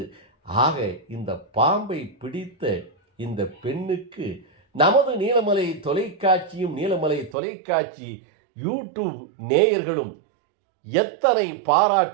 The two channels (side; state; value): left; drops out; at 7.4 s